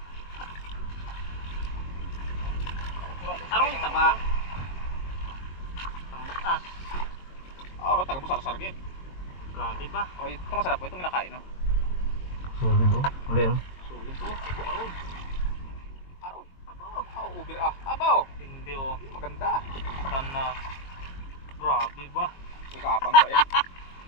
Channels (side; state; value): right; late; 22 ms